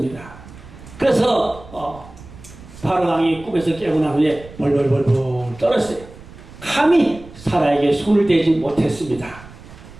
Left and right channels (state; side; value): noise; right; rumble, 18 dB below the sound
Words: 그래서 바로 왕이 꿈에서 깨고 난 후에 벌벌벌벌 떨었어요. 감히 사라에게 손을 대지 못했습니다.